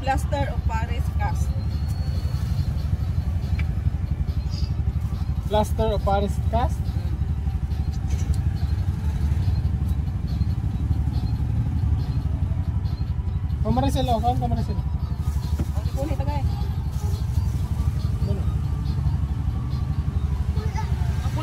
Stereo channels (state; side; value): identical; both; correlation 1.00